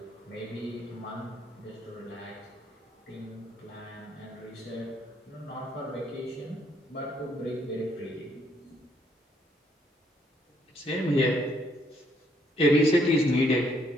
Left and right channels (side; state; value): both; normal; correlation 0.69